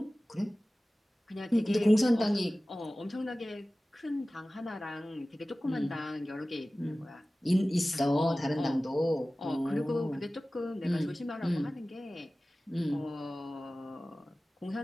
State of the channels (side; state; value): both; normal; correlation 0.97